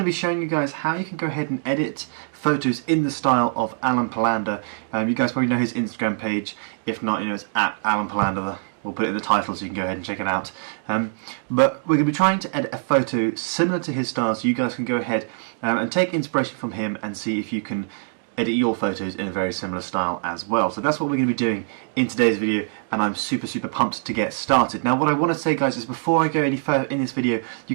be showing you guys how you can go ahead and edit photos in the style of Alen Palander. You guys probably know his Instagram page. If not, you know, it's at Alen Palander. We'll put it in the title so you can go ahead and check it out. But we're going to be trying to edit a photo similar to his style, so you guys can go ahead and take inspiration from him and see if you can edit your photos in a very similar style as well. So that's what we're going to be doing in today's video, and I'm super pumped to get started. Now what I want to say, guys, is before I go any further in this video,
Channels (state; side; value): silent; left; digital silence